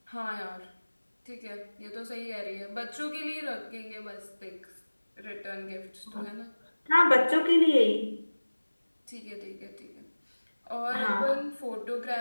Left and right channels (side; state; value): both; inverted; correlation -1.00